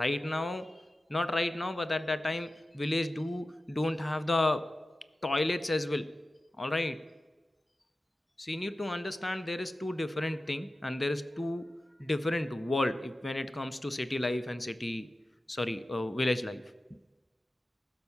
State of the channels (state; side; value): normal; both; correlation 0.95